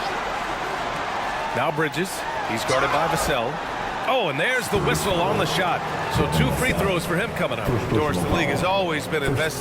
Now Bridges. He's guarded by Vassell. Oh, and there's the whistle on the shot. So 2 free throws for him coming up. Doris, the league has always been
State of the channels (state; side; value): identical; both; correlation 1.00